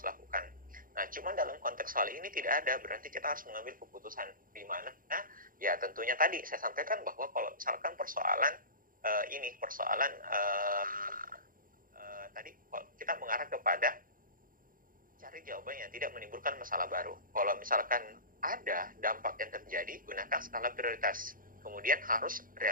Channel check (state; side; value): late; left; 0.40 ms